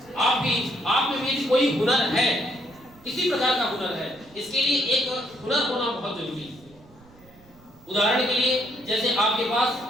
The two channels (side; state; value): right; noise; rumble, 26 dB below the sound